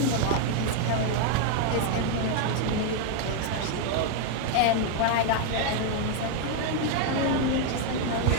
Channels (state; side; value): different; both; correlation 0.00